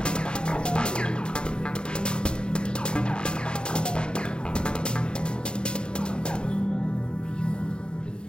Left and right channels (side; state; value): right; late; 0.050 ms